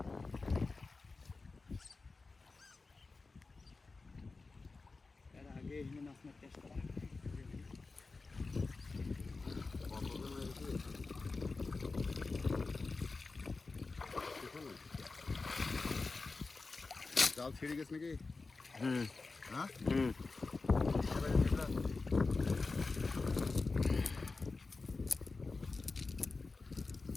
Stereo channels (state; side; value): quieter; right; 3.9 dB